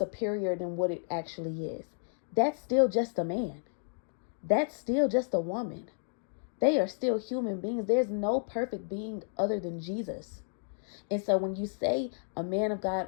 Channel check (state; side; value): silent; right; digital silence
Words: than what it actually is. That's still just a man. That's still just a woman. They are still human beings. There's no perfect being other than Jesus. And so when you say a man of God